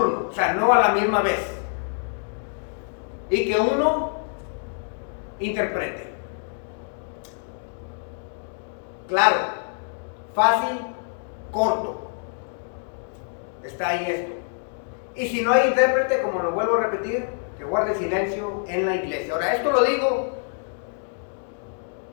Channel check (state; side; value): silent; right; digital silence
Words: o sea, no a la misma vez. Y que uno interprete. Claro, fácil, corto. Está ahí esto. Y si no hay intérprete, como lo vuelvo a repetir, que guarde silencio en la iglesia. Ahora, esto lo digo